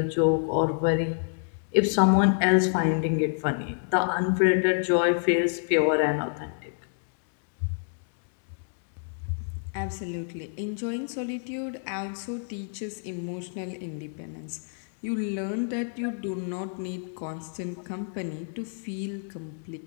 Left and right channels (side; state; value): right; silent; digital silence